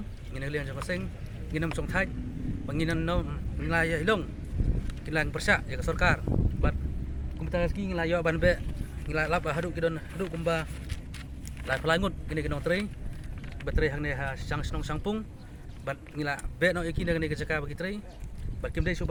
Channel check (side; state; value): both; identical; correlation 1.00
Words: ngina liang jong seng nginam song thai banginan no ngila ya hilong kilang persya ya sarkar bat kumta ski ngila yo ban be ngila lap hadu kidon hadu kumba lai pelangut gini kinong tre baterai hang ne ha sang snong sangpung bat ngila be no iki ne kejaka bagi tre bat kim dei